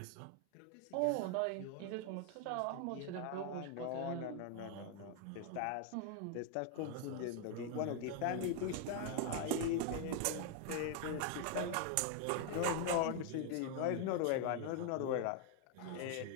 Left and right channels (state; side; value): different; both; correlation 0.00